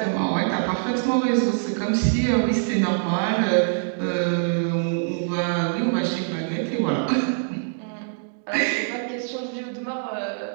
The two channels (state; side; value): silent; left; digital silence